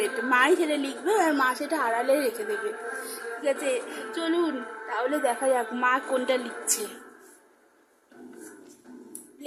মাই সেটা লিখবে আর মা সেটা আড়ালে রেখে দেবে, ঠিক আছে? চলুন তাহলে দেখা যাক মা কোনটা লিখছে।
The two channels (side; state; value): both; identical; correlation 1.00